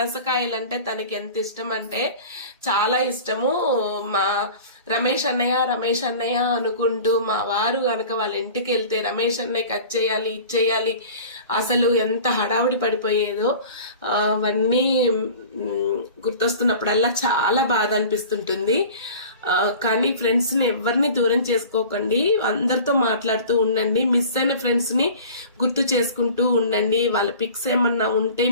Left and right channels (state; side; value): inverted; both; correlation -0.41